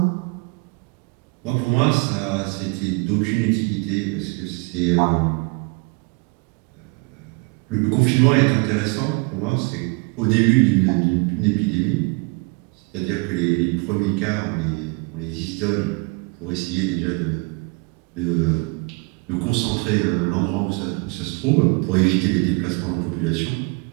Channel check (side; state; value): left; quieter; 30.0 dB